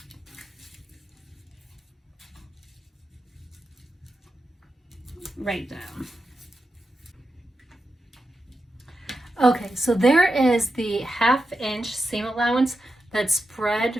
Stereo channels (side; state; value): both; normal; correlation 0.89